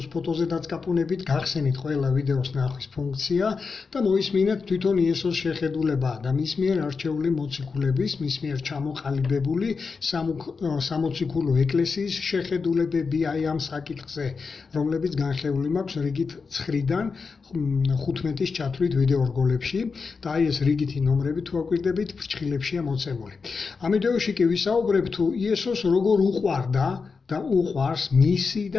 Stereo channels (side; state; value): right; quieter; 4.9 dB